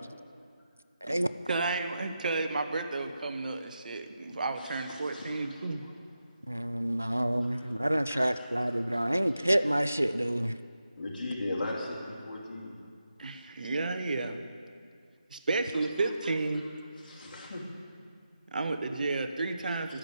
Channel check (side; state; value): both; inverted; correlation -0.88